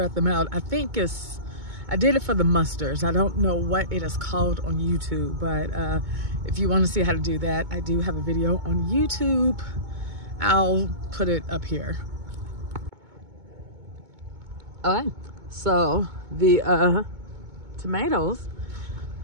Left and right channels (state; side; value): late; left; 2.2 ms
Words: them out. I did it for the mustards. I don't know what it is called on YouTube, but if you want to see how to do that, I do have a video on YouTube. I'll put it up here. All right, so the tomatoes,